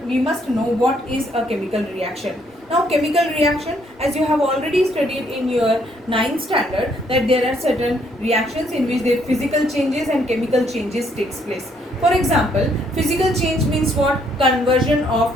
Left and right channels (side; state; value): both; normal; correlation 0.69